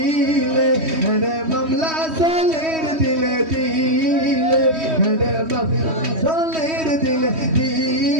হরে মামলা চলে দিলে দিলে হরে মামলা চলে দিলে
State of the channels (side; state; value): left; late; 3.1 ms